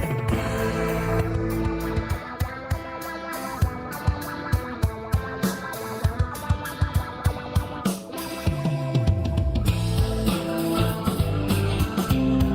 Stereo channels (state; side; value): identical; both; correlation 1.00